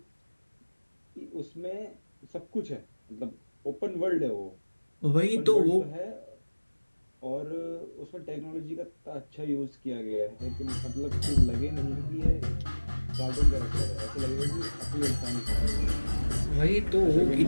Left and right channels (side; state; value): both; inverted; correlation -1.00